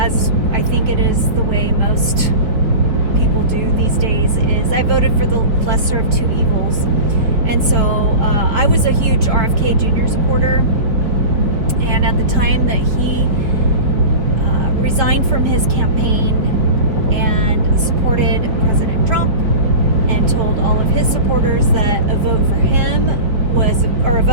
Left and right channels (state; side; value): late; left; 4.9 ms